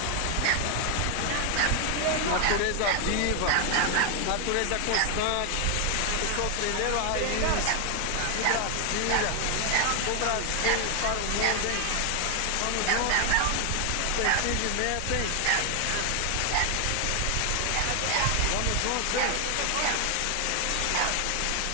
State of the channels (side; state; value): both; different; correlation 0.00